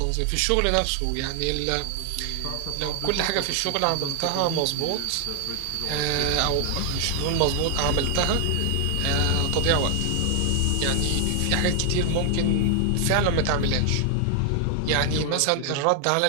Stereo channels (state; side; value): different; both; correlation 0.00